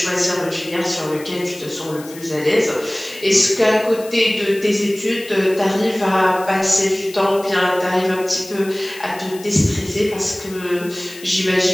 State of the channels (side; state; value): left; noise; hiss, 18 dB below the sound